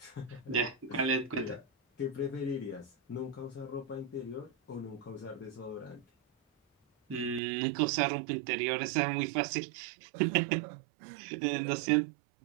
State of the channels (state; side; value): drops out; left; at 7.4 s